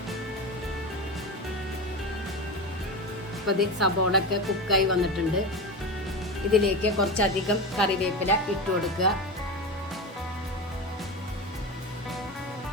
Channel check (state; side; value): normal; both; correlation 0.23